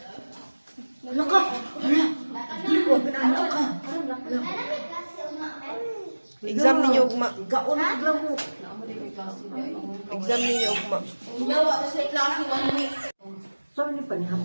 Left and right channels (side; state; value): both; inverted; correlation -1.00